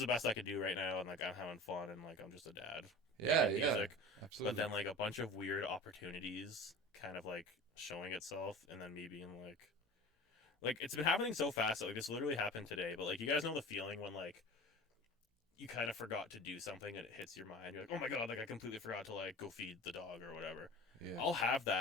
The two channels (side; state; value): both; normal; correlation 0.37